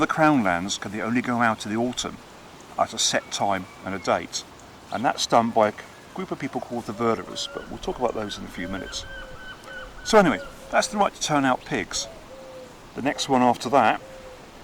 crown lands can they only go out in the autumn at a set time and a date, and that's done by a group of people called the Verderers, but we'll talk about those in a few minutes. So anyway, that's the right to turn out pigs. The next one after that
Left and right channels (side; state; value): both; identical; correlation 1.00